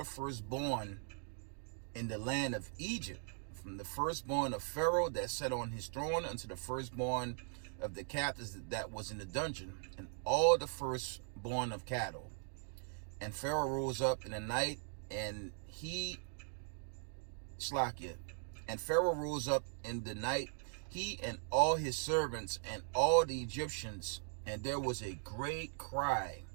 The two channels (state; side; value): silent; left; 51 dB below the other